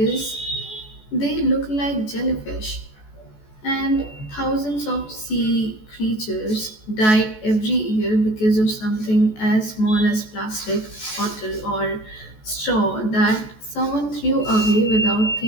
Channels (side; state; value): right; late; 14 ms